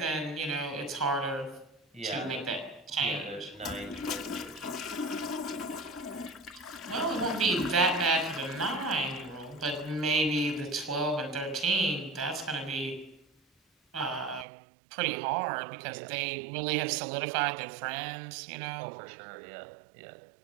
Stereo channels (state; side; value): drops out; left; at 14.5 s